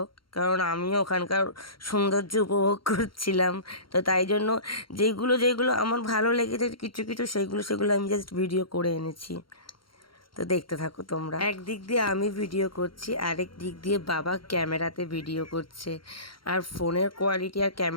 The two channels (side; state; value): right; late; 0.73 ms